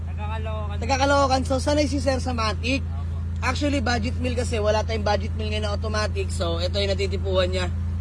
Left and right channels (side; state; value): both; identical; correlation 1.00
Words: Taga-Caloocan. So sanay si Sir sa Matic. Actually, budget meal kasi wala tayong budget meal ngayon na automatic. So ito yung natitipuan niya.